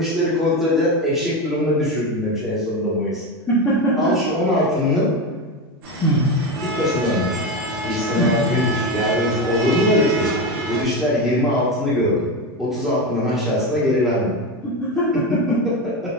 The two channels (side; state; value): both; normal; correlation 0.17